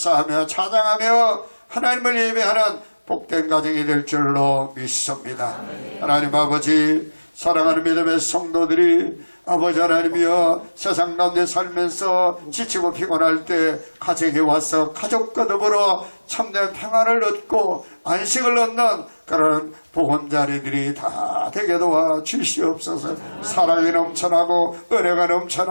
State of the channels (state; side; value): inverted; both; correlation -1.00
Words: 찬양하며 하나님을 예배하는 복된 가정이 될 줄로 믿습니다. 하나님 아버지 사랑하는 믿음의 성도들이 아버지 하나님이여 세상 가운데 살면서 지치고 피곤할 때 가정에 와서 가족과 더불어 참된 평안을 얻고 안식을 얻는 그런 보건자리들이 다 다 되게 도와 주시옵소서. 사랑이 넘쳐나고 은혜가